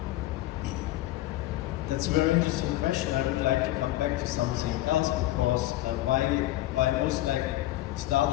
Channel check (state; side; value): quieter; right; 15.9 dB